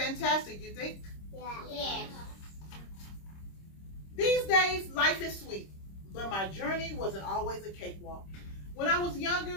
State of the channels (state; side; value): late; right; 26 ms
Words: you think? Yes. These days, life is sweet, but my journey wasn't always a cakewalk. When I was